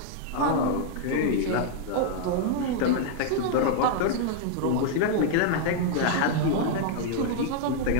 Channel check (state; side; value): different; both; correlation -0.01